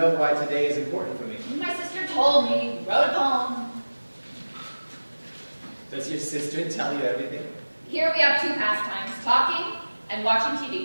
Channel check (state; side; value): inverted; both; correlation -1.00